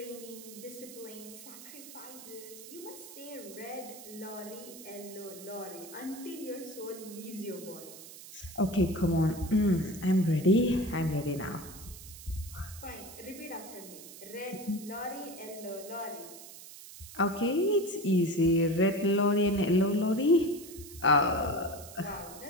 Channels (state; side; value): noise; right; hiss, 15 dB below the sound